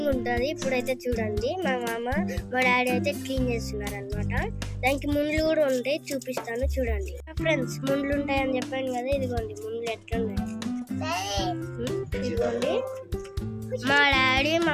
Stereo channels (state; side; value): identical; both; correlation 1.00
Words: ఉంటుంది. ఇప్పుడైతే చూడండి, మా మామ మా డాడీ అయితే క్లీన్ చేస్తున్నారు అనమాట. దానికి ముండ్లు కూడా ఉంటాయి, చూపిస్తాను చూడండి. ఫ్రెండ్స్, ముండ్లు ఉంటాయని చెప్పాను కదా, ఇదిగోండి ముండ్లు ఎట్లున్నాయి. ఇదిగోండి, మా డాడీ